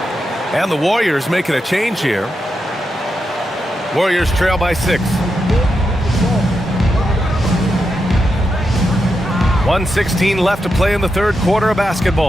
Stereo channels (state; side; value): normal; both; correlation 0.86